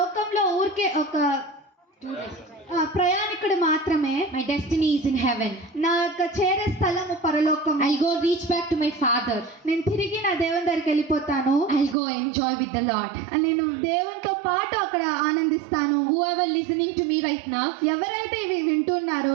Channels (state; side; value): drops out; left; at 12.0 s